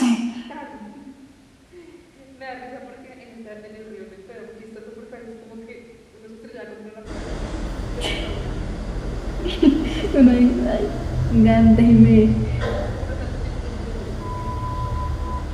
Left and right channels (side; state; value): both; identical; correlation 1.00